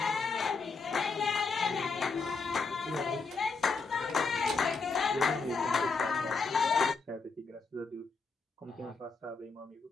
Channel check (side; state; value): right; quieter; 4.5 dB